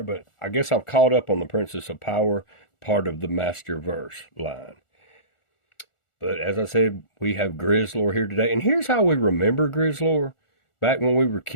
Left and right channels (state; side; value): late; right; 1.4 ms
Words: but I guess I've caught up on the Princess of Power part of the Masterverse line. But as I said, we have Grizzlor here today. And here's how we remember Grizzlor. Back when we were